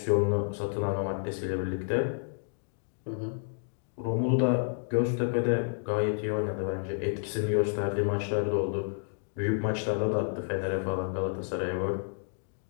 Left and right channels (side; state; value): right; silent; digital silence